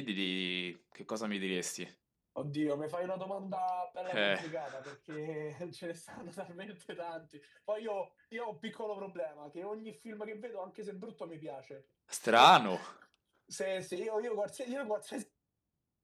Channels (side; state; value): both; identical; correlation 1.00